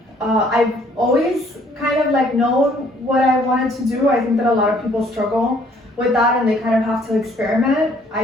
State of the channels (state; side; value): normal; both; correlation 0.62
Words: I've always kind of like known what I wanted to do. I think that a lot of people struggle with that and they kind of have to experiment.